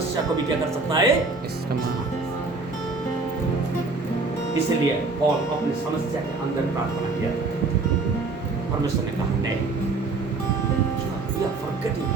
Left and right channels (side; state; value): left; quieter; 3.8 dB